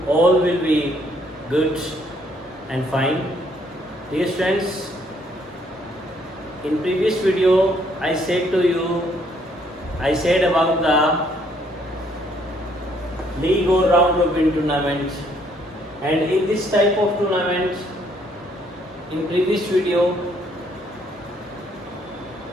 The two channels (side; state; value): both; normal; correlation 0.67